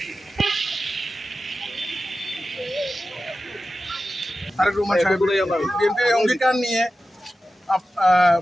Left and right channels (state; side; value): normal; both; correlation 0.93